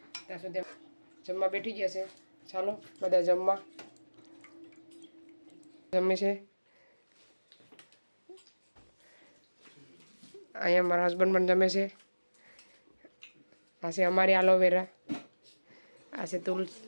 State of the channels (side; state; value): both; inverted; correlation -1.00